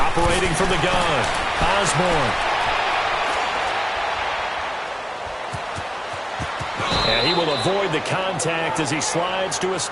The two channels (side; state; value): both; identical; correlation 1.00